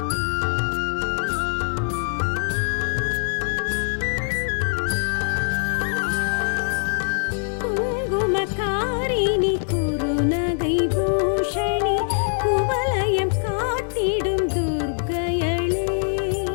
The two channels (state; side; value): silent; right; 63 dB below the other